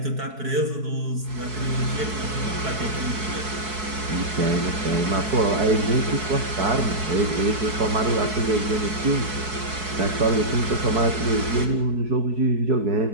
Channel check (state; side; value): late; left; 4.7 ms